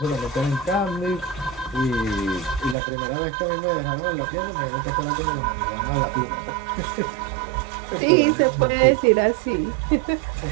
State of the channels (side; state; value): left; drops out; at 2.8 s